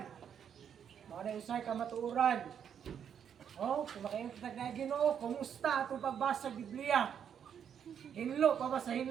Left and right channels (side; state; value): left; quieter; 8.3 dB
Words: Mga na-usay ka matuuran. Oh, kung makaingon ta na Ginoo, kumusta atong pagbasa sa Biblia? Hinlo pa ba sa